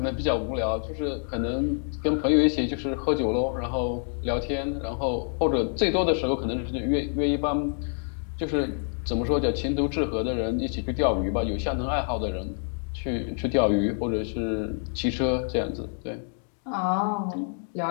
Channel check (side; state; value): right; silent; 59 dB below the other